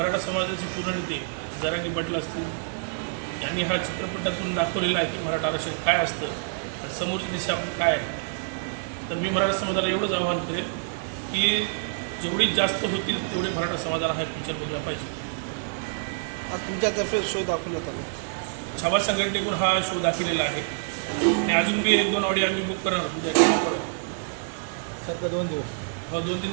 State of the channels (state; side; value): silent; left; digital silence